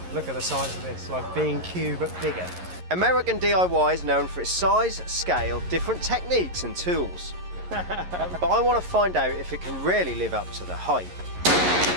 look at the size of this, like B&Q but bigger. American DIY is known for its size, scale, different techniques and tools. But I want to find out if it can really live up to the hype.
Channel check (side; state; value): left; late; 11 ms